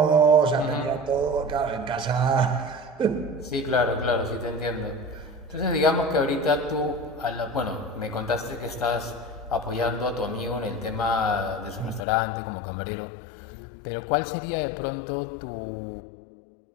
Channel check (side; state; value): right; drops out; at 12.1 s